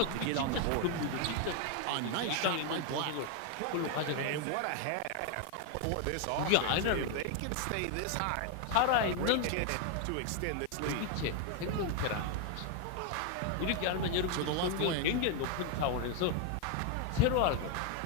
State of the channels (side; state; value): both; different; correlation 0.01